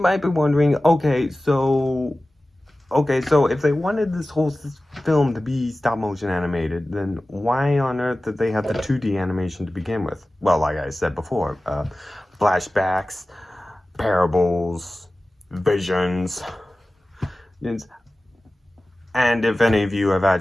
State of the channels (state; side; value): normal; both; correlation 0.96